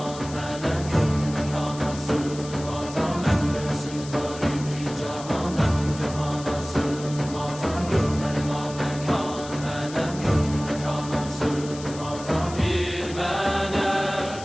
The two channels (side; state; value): left; noise; hiss, 15 dB below the sound